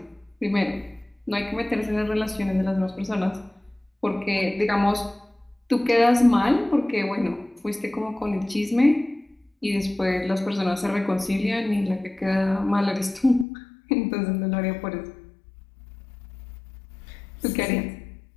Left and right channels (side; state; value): right; drops out; at 13.5 s